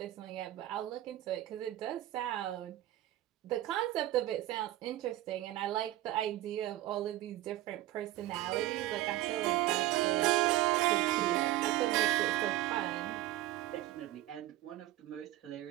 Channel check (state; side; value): quieter; left; 15.3 dB